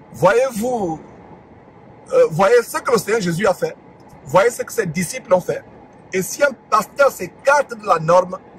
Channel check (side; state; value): both; identical; correlation 1.00